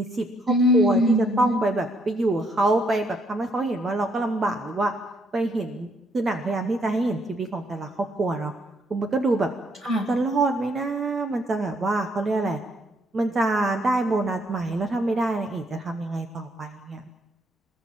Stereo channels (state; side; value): normal; both; correlation 0.71